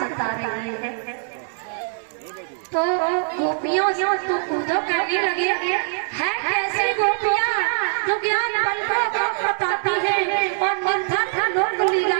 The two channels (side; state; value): left; silent; digital silence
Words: रही है। तो गोपियों से तो उद्धव कहने लगे, है कैसी गोपियां जो ज्ञान बल को बताती है और निर्धन लोक लीला